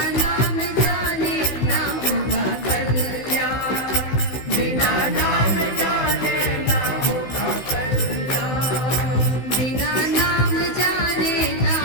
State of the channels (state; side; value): late; right; 16 ms